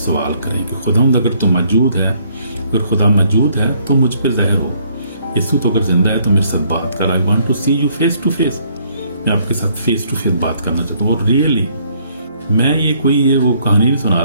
करें कि खुदावंद अगर तो मौजूद है, अगर खुदा मौजूद है तो मुझ पर ज़ाहिर हो। यीशु तो अगर जिंदा है तो मेरे साथ बात कर, I want to see you face to face, मैं आपके साथ फेस टू फेस बात करना चाहता हूँ। और रियली मैं ये वो कहानी नहीं सुना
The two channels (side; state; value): both; inverted; correlation -0.66